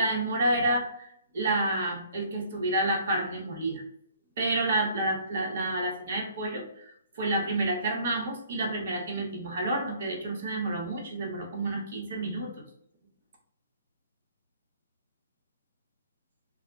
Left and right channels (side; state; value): both; inverted; correlation -0.58